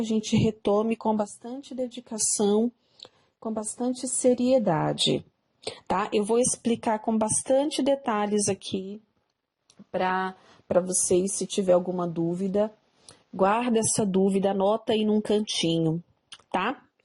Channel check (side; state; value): both; identical; correlation 1.00